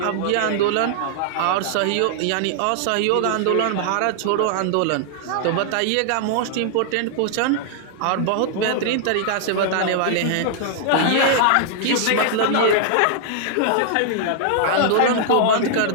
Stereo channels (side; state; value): both; different; correlation -0.01